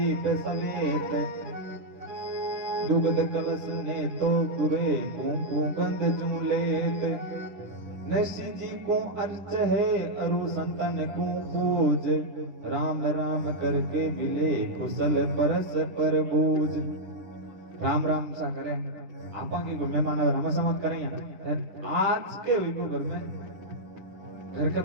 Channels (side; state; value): left; late; 10 ms